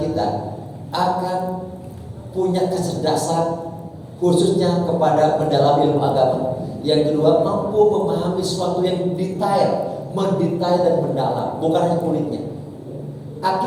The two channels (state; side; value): identical; both; correlation 1.00